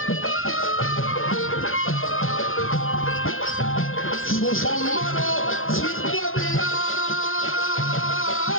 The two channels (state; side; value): late; right; 0.60 ms